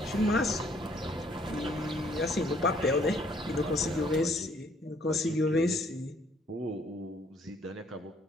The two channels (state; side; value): normal; both; correlation 0.63